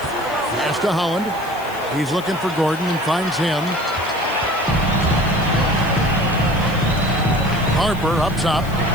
to Holland. He's looking for Gordon and finds him. Harper up top.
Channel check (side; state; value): left; noise; hiss, 20 dB below the sound